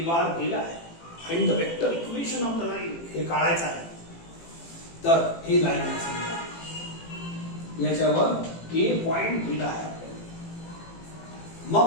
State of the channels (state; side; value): late; right; 18 ms